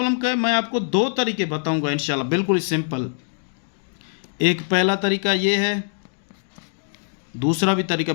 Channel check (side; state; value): right; silent; digital silence